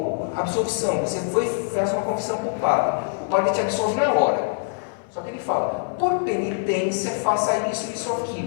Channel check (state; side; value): silent; right; 63 dB below the other